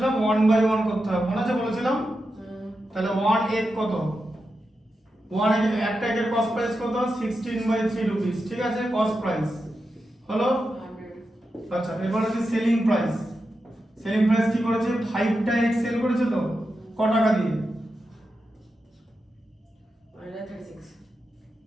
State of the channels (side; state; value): both; normal; correlation 0.89